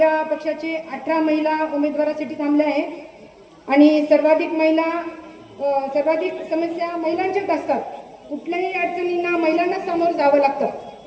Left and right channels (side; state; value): both; identical; correlation 1.00